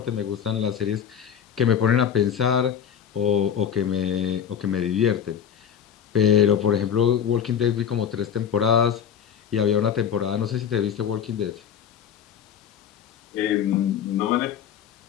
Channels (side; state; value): right; quieter; 8.5 dB